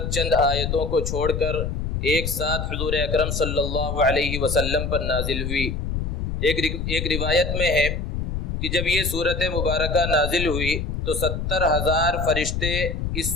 چند آیتوں کو چھوڑ کر ایک ساتھ حضور اکرم صلی اللہ علیہ وسلم پر نازل ہوئی۔ ایک روایت میں ہے کہ جب یہ صورت مبارکہ نازل ہوئی تو 70,000 فرشتے اس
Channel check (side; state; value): left; noise; rumble, 2 dB below the sound